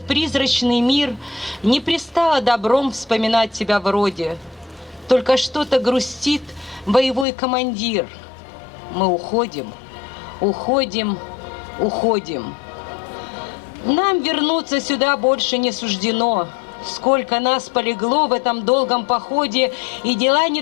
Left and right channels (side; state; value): right; drops out; at 7.2 s